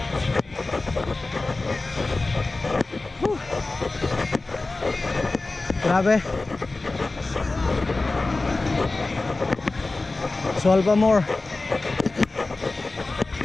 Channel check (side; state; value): right; quieter; 3.3 dB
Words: Grabe. Swal pa more.